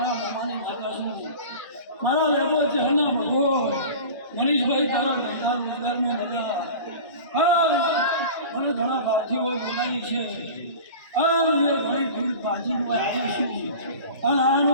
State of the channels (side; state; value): both; inverted; correlation -0.37